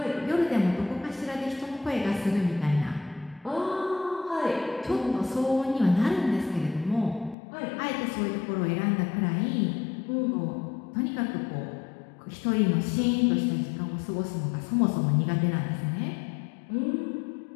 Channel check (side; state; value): right; drops out; at 7.4 s